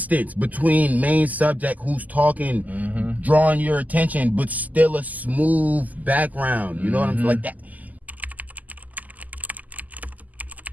between main subject who's talking, drawing your attention, but still a smooth background. You know what I'm saying? Like that.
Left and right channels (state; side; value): late; left; 0.079 ms